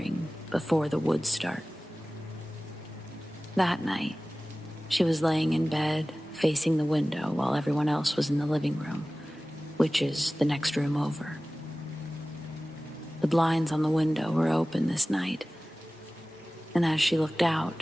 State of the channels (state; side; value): normal; both; correlation 0.97